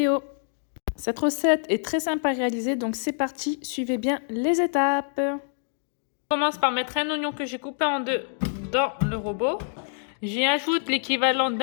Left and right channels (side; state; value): right; silent; digital silence